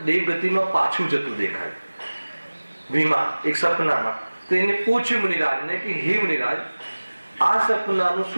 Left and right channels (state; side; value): inverted; both; correlation -1.00